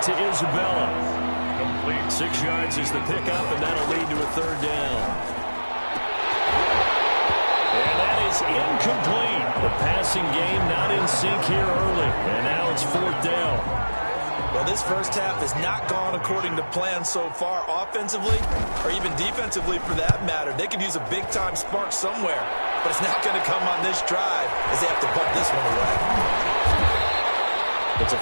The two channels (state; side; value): inverted; both; correlation -1.00